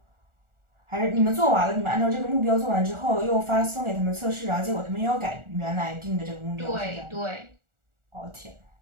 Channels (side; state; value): left; late; 1.4 ms